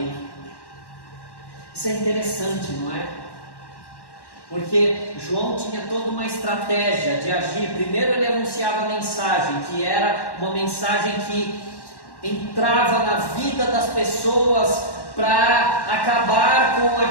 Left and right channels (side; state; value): right; late; 1.1 ms